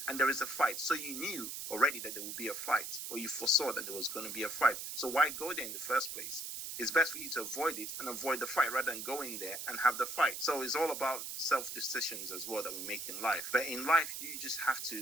and there is a fight. So you knew already that there would be a fight, or you foresaw that there was going to be a fight. So why go there in the first place? It's best for you to avoid it and avoid the fight rather than go in there and have the fight. So it's all about self-decisions as well that we make in life. But in life, you just have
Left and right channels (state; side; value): noise; right; hiss, 6 dB below the sound